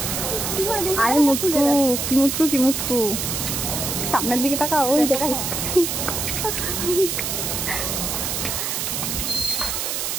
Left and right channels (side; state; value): right; noise; hiss, 2 dB below the sound